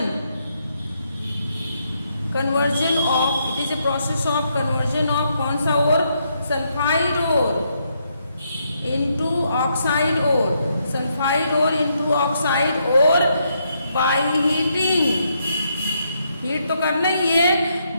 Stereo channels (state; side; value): inverted; both; correlation -0.77